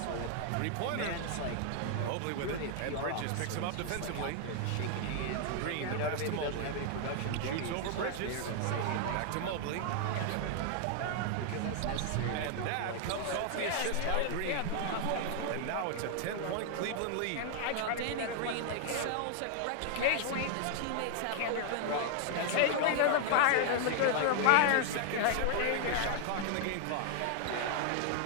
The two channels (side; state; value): both; different; correlation 0.00